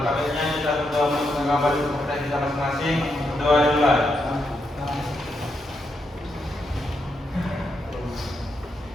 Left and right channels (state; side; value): normal; both; correlation 0.81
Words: baiknya kita berdoa untuk mengabari kepercayaan kita masing-masing. Berdoa dimulai.